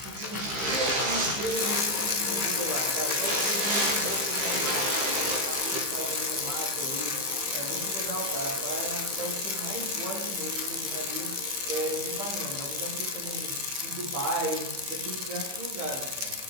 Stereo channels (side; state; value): left; late; 15 ms